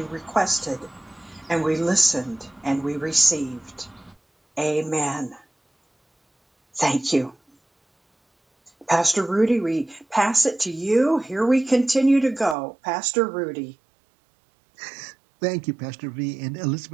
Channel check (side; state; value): left; drops out; at 12.6 s